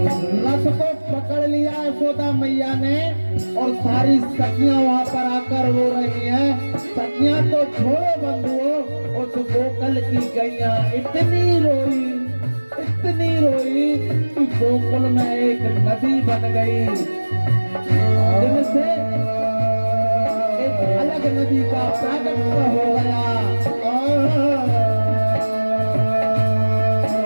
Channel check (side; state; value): both; inverted; correlation -1.00